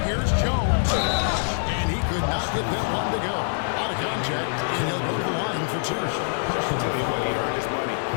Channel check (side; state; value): right; silent; digital silence